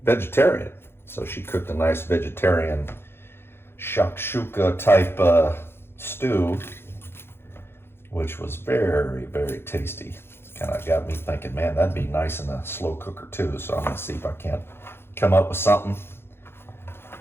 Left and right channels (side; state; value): right; late; 0.11 ms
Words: vegetarian, so she cooked a nice vegetarian shakshuka type stew, which was very, very tasty. Kind of got me thinking, man, that'd be nice in a slow cooker too. So I'm gonna see if I can't come up with something.